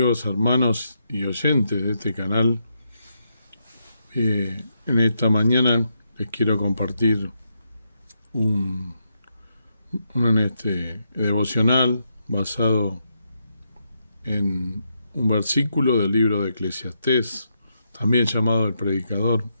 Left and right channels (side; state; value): both; inverted; correlation -0.81